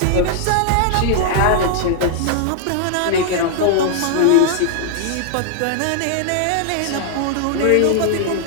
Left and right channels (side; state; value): both; different; correlation -0.01